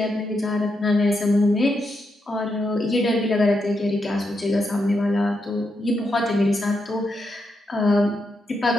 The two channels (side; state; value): both; normal; correlation 0.83